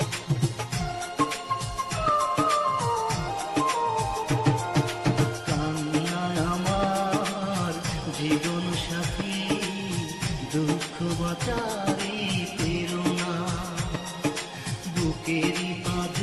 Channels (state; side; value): identical; both; correlation 1.00